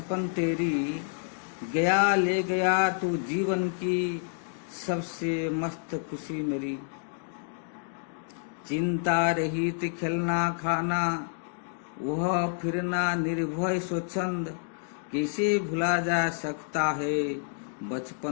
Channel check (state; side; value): silent; right; digital silence